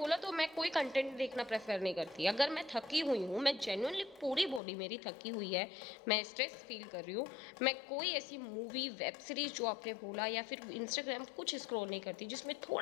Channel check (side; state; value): right; drops out; at 4.6 s